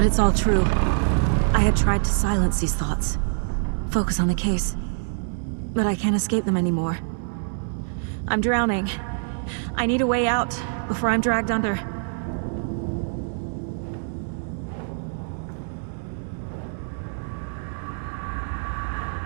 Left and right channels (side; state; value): left; silent; digital silence